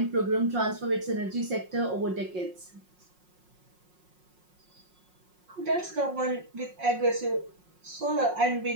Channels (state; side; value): late; left; 5.5 ms